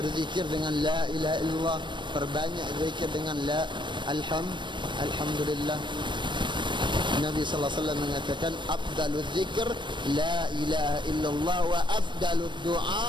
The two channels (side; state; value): left; late; 0.22 ms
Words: dengan la ilaha illallah, perbanyak zikir dengan la alhamdulillah. Nabi sallallahu alaihi wasallam mengatakan afdaluz zikr la ilaha illallah wa afdalud